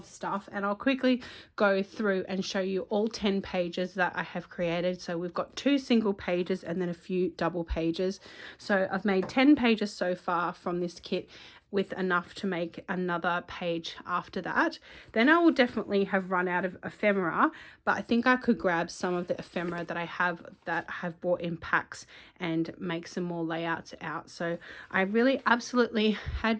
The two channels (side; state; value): both; identical; correlation 1.00